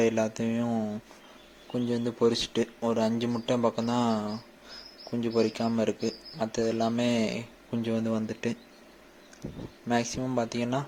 எல்லாத்தையும் குஞ்சு பொரிச்சிட்டு ஒரு 5 முட்டை பக்கம்தான் குஞ்சு பொரிக்காமல் இருக்குது. மற்றது எல்லாமே குஞ்சு வந்துட்டு மேக்ஸிமம் பார்த்திங்கன்னா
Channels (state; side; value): identical; both; correlation 1.00